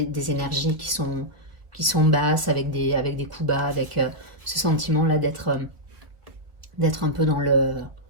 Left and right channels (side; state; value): left; late; 1.6 ms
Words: énergies qui sont basses, avec des coups bas, avec ce sentiment-là d'être un peu dans